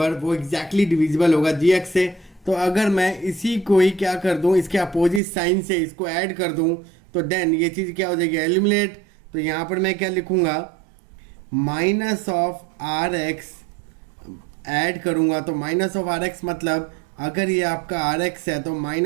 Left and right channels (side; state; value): left; drops out; at 5.2 s